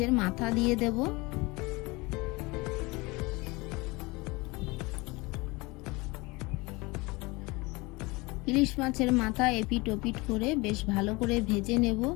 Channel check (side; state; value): right; quieter; 24.2 dB